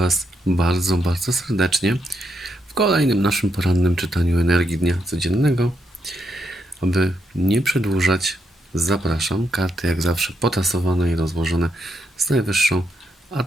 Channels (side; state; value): both; normal; correlation 0.80